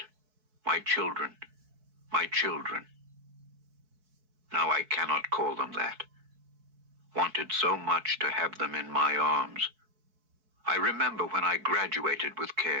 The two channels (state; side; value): late; left; 4.6 ms